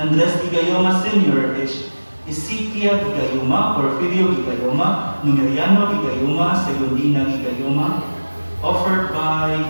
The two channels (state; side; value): inverted; both; correlation -1.00